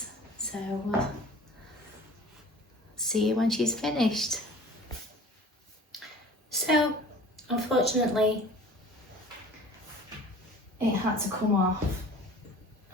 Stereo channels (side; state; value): both; normal; correlation 0.45